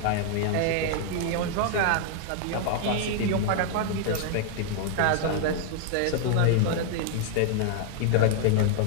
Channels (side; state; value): both; different; correlation 0.00